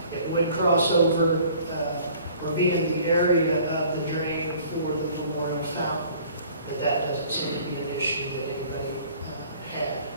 It would cross over or be in the area of the drain for the memorial fountain, but that doesn't seem to be an issue that anybody had.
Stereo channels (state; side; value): inverted; both; correlation -0.52